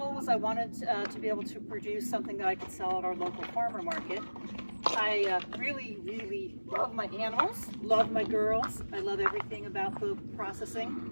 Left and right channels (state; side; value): inverted; both; correlation -1.00